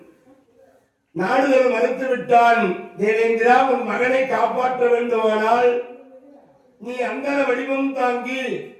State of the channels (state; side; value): identical; both; correlation 1.00